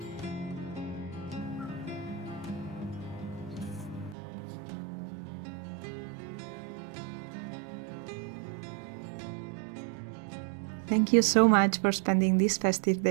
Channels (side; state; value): left; drops out; at 4.2 s